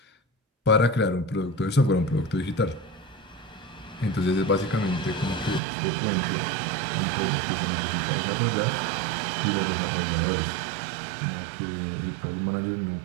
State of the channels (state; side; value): drops out; left; at 5.6 s